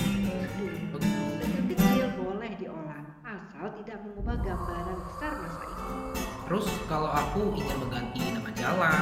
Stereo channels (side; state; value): both; identical; correlation 1.00